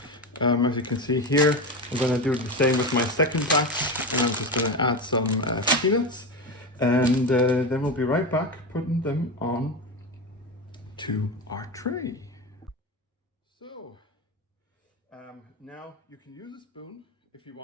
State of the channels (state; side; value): normal; both; correlation 0.19